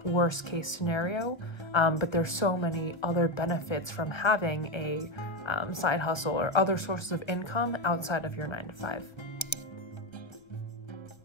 worst case scenario. But there's so many other benefits from having a side hustle or other sources of income outside of your 9 to 5.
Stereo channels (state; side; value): late; right; 1.3 ms